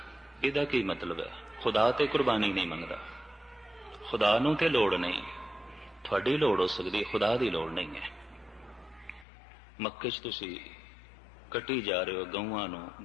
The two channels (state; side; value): drops out; right; at 9.2 s